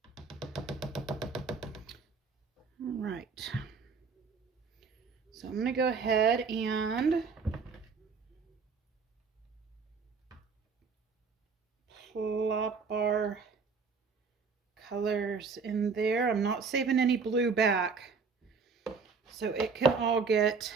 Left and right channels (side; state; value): left; quieter; 5.2 dB